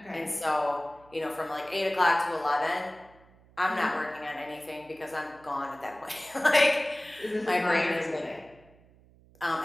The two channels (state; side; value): noise; right; hum, 27 dB below the sound